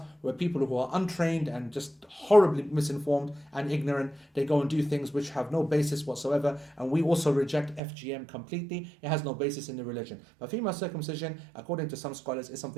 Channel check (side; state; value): left; drops out; at 7.8 s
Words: where people who are untrained and just horribly misinformed and ignorant, they go and do things which have no basis whatsoever, and we also reject FGM completely. It has no basis in the religion. But female circumcision, according to some scholars, is